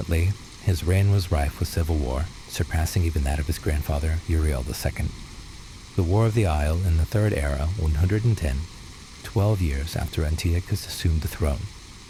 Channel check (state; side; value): identical; both; correlation 1.00